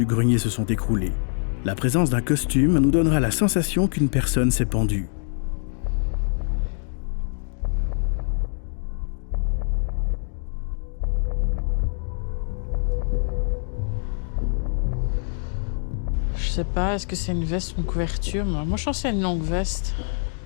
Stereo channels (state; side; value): silent; right; 62 dB below the other